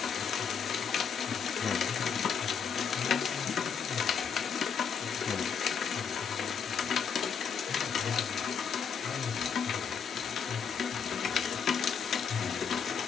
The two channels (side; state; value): right; quieter; 6.8 dB